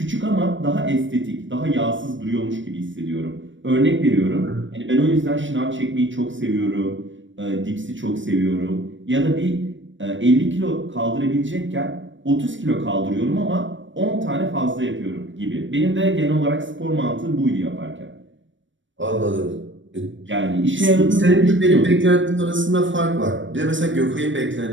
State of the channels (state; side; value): late; left; 0.55 ms